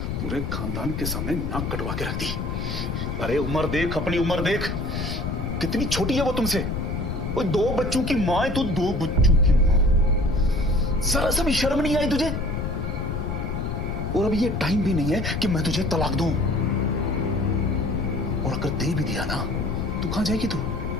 पूरे खानदान के सामने नाक कटवा के रख दी। अरे उम्र देख, अपनी उम्र देख, कितनी छोटी है वो तुमसे। वो 2 बच्चों की मां है, तू 2 बच्चों की मां। जरा सा भी शर्म नहीं आई तुझे? और अभी ये टाइम भी नहीं है कि मैं तुझे तलाक दूं। और अगर दे भी दिया ना, तो कहां जाएगी तू?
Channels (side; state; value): left; noise; rumble, 3 dB below the sound